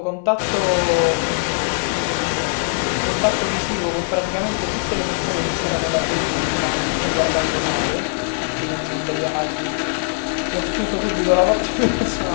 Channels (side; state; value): right; silent; 65 dB below the other